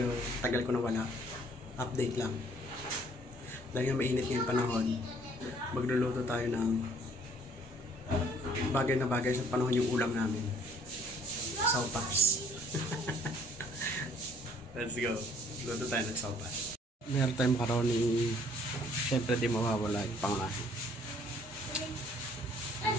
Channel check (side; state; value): both; normal; correlation 0.60